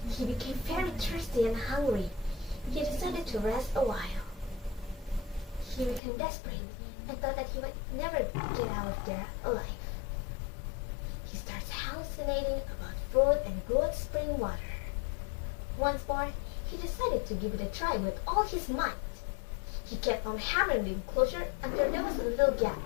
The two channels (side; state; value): right; drops out; at 6.0 s